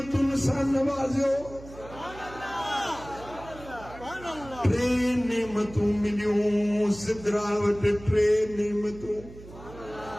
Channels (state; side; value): noise; right; hum, 17 dB below the sound